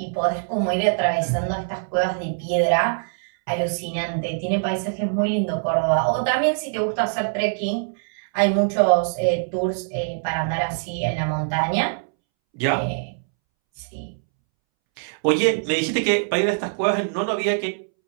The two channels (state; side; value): silent; left; 63 dB below the other